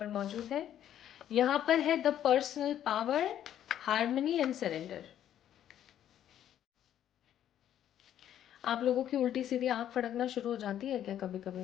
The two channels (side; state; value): right; quieter; 10.8 dB